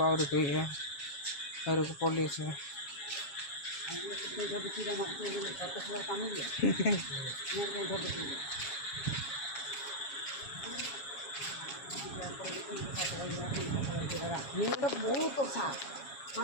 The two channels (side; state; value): right; late; 7.2 ms